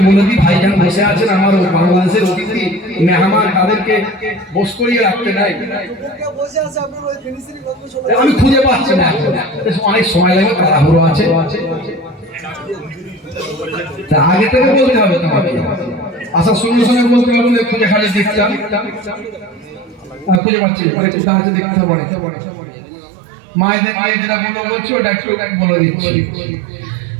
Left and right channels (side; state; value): left; drops out; at 20.4 s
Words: বলে দিই। ভাইজান বসে আছেন, আমার বাংলাদেশের অতিথি মেহমান, তাদেরকে বস করিয়ে রাখতে নাই, আমি খুঁজে পাচ্ছি না, অনেক সময় লাগবে, তাড়াহুড়ো আছে, তা আগে থেকে বলতে হবে তোমাকে। আসার সঙ্গে সঙ্গে বলতে পারবো খুঁজে খালি দেখতাম, খুঁজে পাচ্ছি কোথায় আছে দেখতে পারে। মায়েদের মায়ের যেটা বলছি ওটা একটু বলে দিচ্ছি।